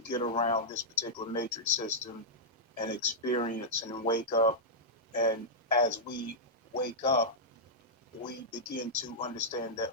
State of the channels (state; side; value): normal; both; correlation -0.08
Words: get around this particular matrix system and experience and wake up. And as we wake up, we begin to understand that